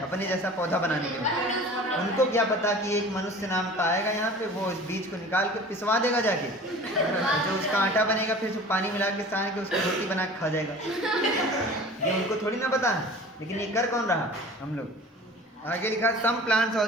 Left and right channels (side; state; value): both; normal; correlation 0.42